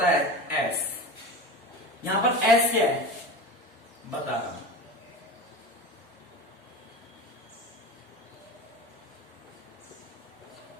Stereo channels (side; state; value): both; normal; correlation 0.30